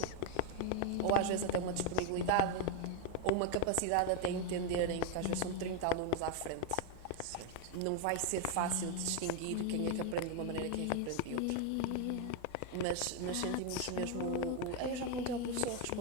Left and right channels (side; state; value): both; different; correlation 0.01